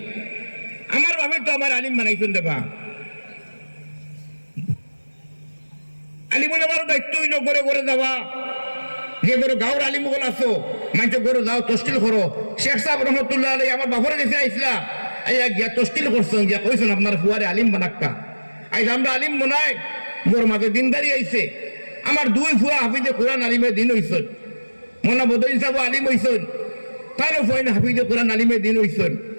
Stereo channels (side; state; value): both; inverted; correlation -1.00